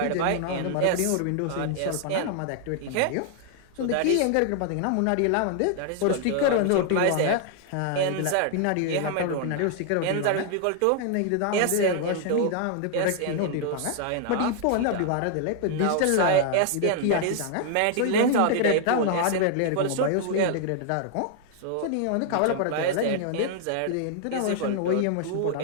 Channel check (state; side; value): different; both; correlation 0.00